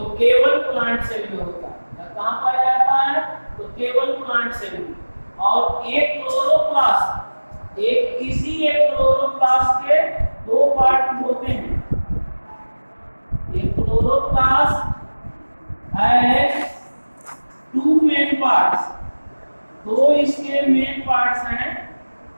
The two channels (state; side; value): inverted; both; correlation -1.00